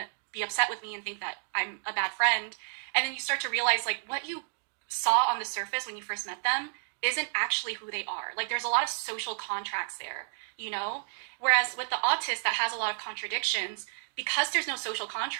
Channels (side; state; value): left; silent; digital silence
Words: be upset with me and think that I'm a bad friend. And then you start to realize, like, what you saw on the surface when you first met them isn't actually who they are. Like, there's a lot of social contracts there, Whereas with the autist that has a lot of contradictions, because there's no social